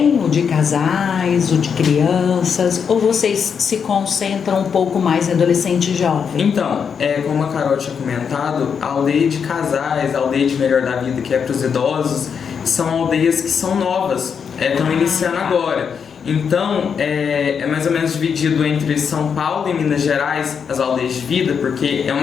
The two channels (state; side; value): quieter; right; 6.7 dB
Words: o de casais, o de crianças, ou vocês se concentram um pouco mais em adolescente e jovem? Então, como a Carol tinha comentado, a aldeia de casais, a aldeia de melhor da vida, que é para os idosos, são aldeias que são novas, estão iniciando agora. Então, é mais ou menos dividido entre São Paulo e Minas Gerais, as aldeias de vida, porque é